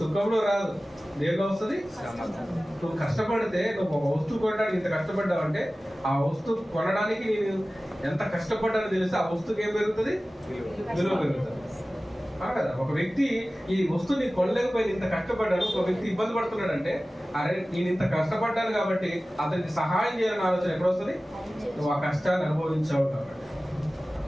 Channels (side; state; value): both; normal; correlation 0.97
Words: రాదు. దేనిలో వస్తుంది? నువ్వు కష్టపడితే, నువ్వు ఒక వస్తువు కొనడానికి ఇంత కష్టపడ్డావు అంటే, ఆ వస్తువు కొనడానికి నేను ఎంత కష్టపడ్డానో తెలిస్తే ఆ వస్తువుకి ఏం పెరుగుతుంది? విలువ పెరుగుతుంది. కదా. ఒక వ్యక్తి ఈ వస్తువుని కొనలేకపోయి ఇంత కష్టపడ్డాడు, ఒక వ్యక్తి ఇబ్బంది పడుతున్నాడు అంటే, అరే నేను ఇంత కష్టపడ్డాను కాబట్టి అతనికి సహాయం చేయాలని ఆలోచన ఎక్కడ వస్తుంది? నువ్వు ఆ కష్టాన్ని అనుభవించావు కాబట్టి.